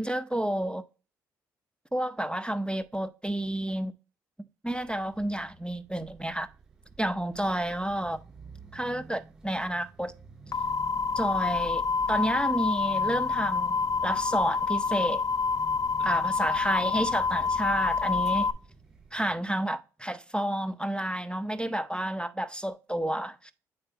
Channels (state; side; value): normal; both; correlation 0.68